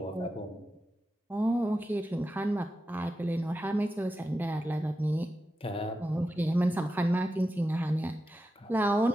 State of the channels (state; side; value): normal; both; correlation 0.91